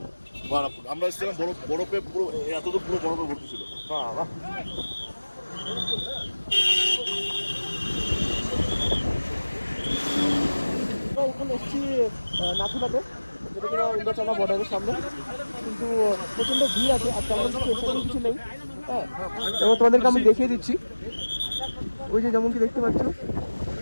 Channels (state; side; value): inverted; both; correlation -1.00